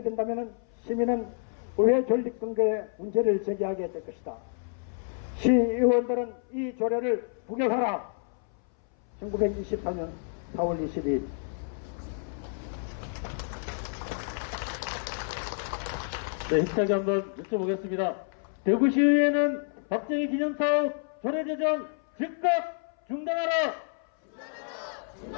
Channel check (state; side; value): silent; right; 58 dB below the other